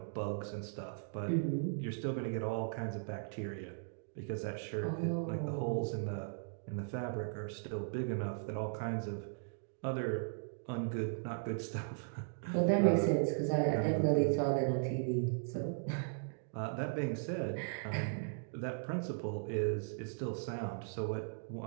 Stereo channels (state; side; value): silent; left; digital silence